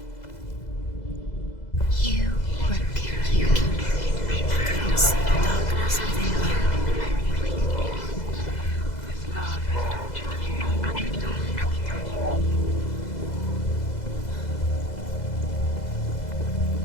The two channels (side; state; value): right; late; 2.0 ms